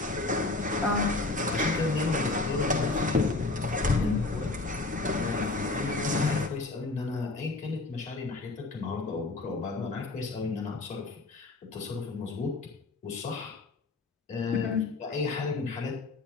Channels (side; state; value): right; quieter; 3.2 dB